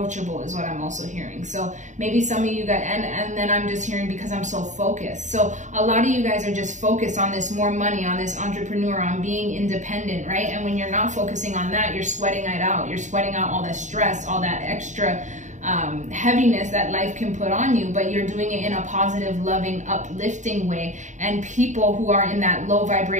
is what I'm also hearing. So maybe some of you guys, and then I'm just hearing because I'm so focused. So a lot of you guys are just focused on this more money, on this entrepreneur, on being independent, right? And when you're not focusing on that, you're sweating it out. You're sweating out all that stress, all that extra heaviness that life can put on you, but you're doing it in a positive, loving, uplifting way. And people who are in that low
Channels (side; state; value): left; late; 0.35 ms